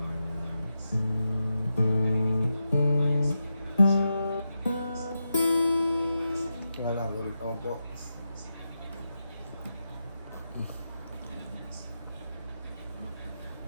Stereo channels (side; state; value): both; inverted; correlation -0.88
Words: Wala, galit naman po.